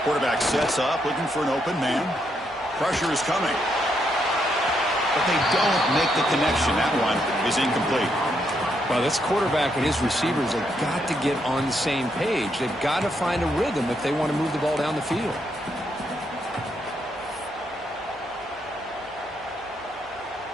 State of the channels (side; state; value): left; noise; hum, 29 dB below the sound